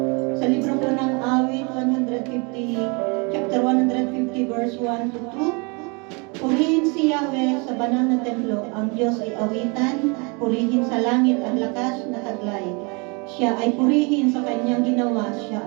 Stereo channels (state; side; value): quieter; left; 31.3 dB